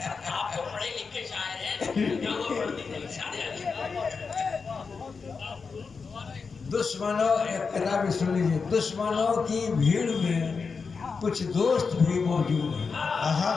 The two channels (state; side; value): quieter; right; 5.1 dB